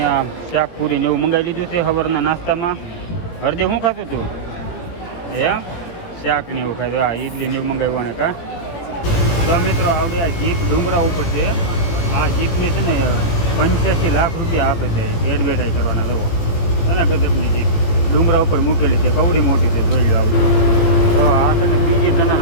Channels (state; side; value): late; right; 17 ms